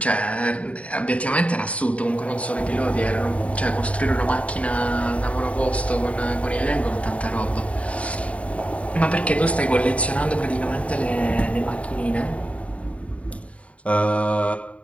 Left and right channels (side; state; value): right; late; 0.065 ms